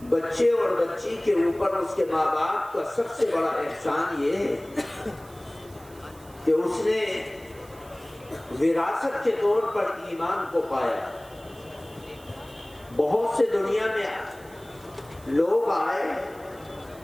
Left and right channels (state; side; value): noise; right; hiss, 24 dB below the sound